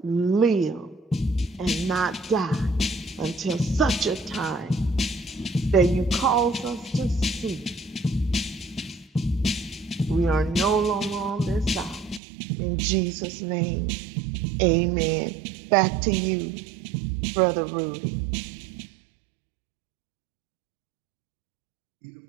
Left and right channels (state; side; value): drops out; left; at 12.2 s